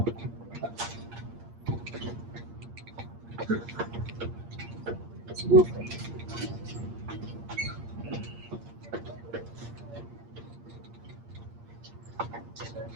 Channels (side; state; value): left; late; 8.6 ms